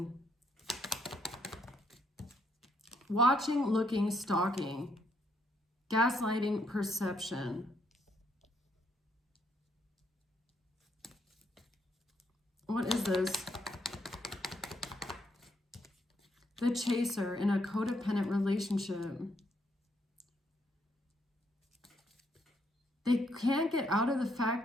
Watching, looking, stalking. Gaslighting, perception. What is this? The Chaser in a codependent relationship. They can't get out of the fact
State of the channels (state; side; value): normal; both; correlation 0.73